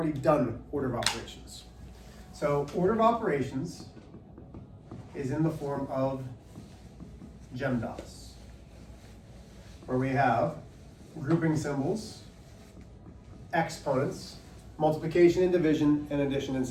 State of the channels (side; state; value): both; identical; correlation 1.00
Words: done order of operations. So order of operations is in the form of GEMDAS, where we have grouping symbols, exponents, multiplication and division, and addition and